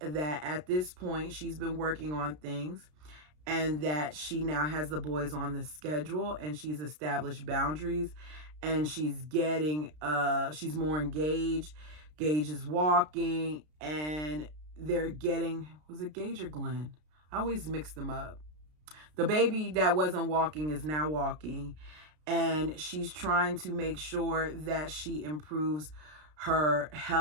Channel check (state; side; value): late; left; 33 ms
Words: at this point she's been working on things and that she now has the boys on the schedule and she's established boundaries and she's more engaged. Gage is walking and they're getting, was it Gage or Glenn? I always mix them up. The baby that wasn't walking is now walking, and she's trying to make sure that she improves her